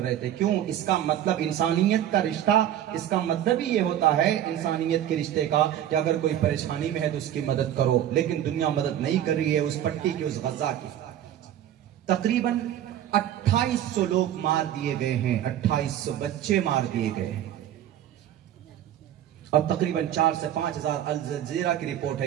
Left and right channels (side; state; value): left; quieter; 11.3 dB